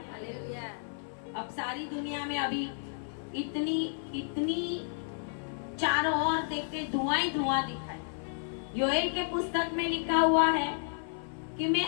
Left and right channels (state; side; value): silent; right; 56 dB below the other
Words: अब सारी दुनिया में अभी इतनी चारों ओर देखते धुआं ही धुआं दिखाई। योएल के पुस्तक में लिखा हुआ है कि